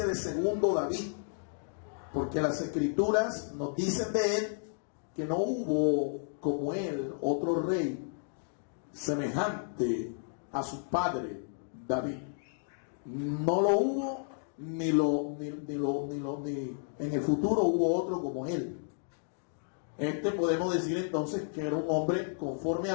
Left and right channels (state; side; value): silent; right; digital silence